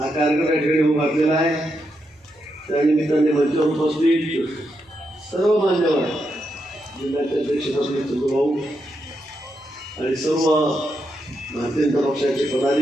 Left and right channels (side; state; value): both; normal; correlation 0.83